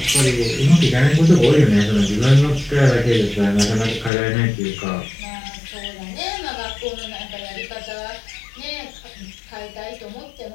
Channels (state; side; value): drops out; right; at 4.1 s